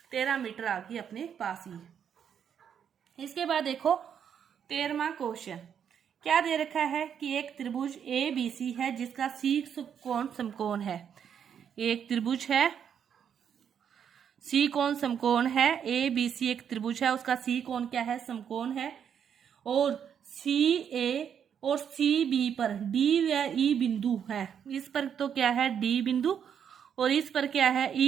13 मीटर आ गई अपने पास ही। इसके बाद देखो 13वां क्वेश्चन क्या दे रखा है कि एक त्रिभुज ए बी सी है जिसका सी कोण समकोण है। एक त्रिभुज है, सी कोण समकोण है, ए बी सी एक त्रिभुज है, उसका सी कोण क्या है, समकोण है, और सी ए और सी बी पर डी या ई बिंदु है। इस पर तो क्या है, डी बिंदु, और इस पर क्या है,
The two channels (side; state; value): left; quieter; 8.2 dB